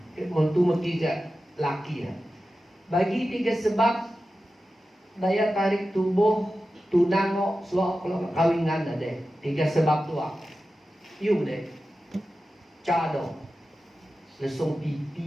mutu metiga laki ya. Bagi 3 sebab daya tarik tubuh tunango suak kalau kawinan ada 3 sebab tua. Yuk deh, cado, lesung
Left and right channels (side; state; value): both; normal; correlation 0.93